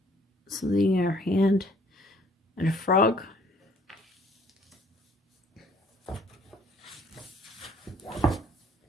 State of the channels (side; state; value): both; normal; correlation 0.59